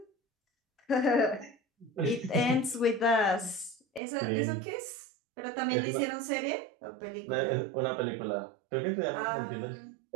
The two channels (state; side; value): drops out; left; at 4.0 s